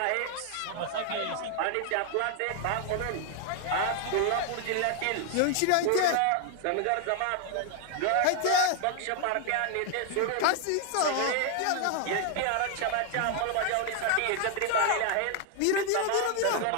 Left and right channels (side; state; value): both; different; correlation 0.00